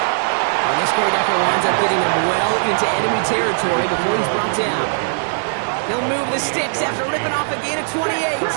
And this great effort winds up getting him well into enemy territory before he's brought down. He'll move the sticks after ripping off a gain of 28.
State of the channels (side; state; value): left; silent; digital silence